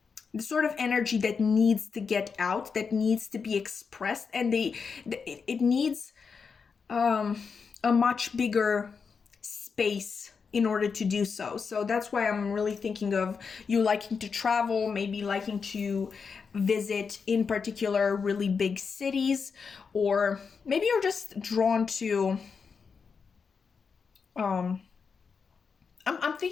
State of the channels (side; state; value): right; quieter; 5.6 dB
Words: sort of energy that needs to get out, that needs to be expressed, and it needs a much bigger space in order to do so. So that's why I'm really thinking of you liking to travel, maybe liking to visit in particular really big cities, or maybe you're just drawn to I'm